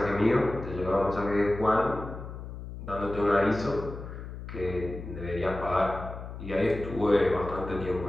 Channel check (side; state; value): left; noise; hum, 10 dB below the sound